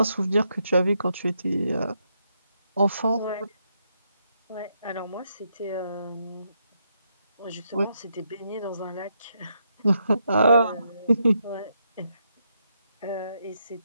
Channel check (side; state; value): both; inverted; correlation -0.79